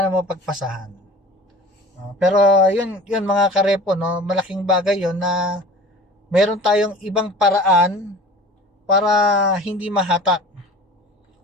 na mapagpasahan. Pero yun mga karepo, no, malaking bagay yun na meron tayong ibang paraan para hindi mahatak.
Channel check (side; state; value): both; normal; correlation 0.41